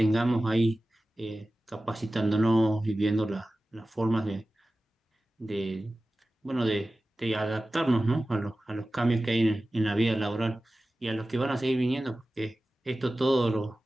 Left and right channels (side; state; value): both; normal; correlation 0.96